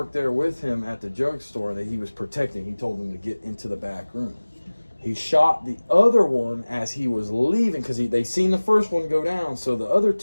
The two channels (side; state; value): both; inverted; correlation -1.00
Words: there with him at the drugstore that he was protecting. He told them to get into the back room. He shot the other one as he was leaving, because they seen the first one go down, so the other